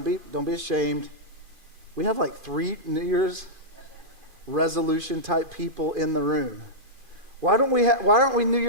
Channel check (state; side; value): late; left; 2.5 ms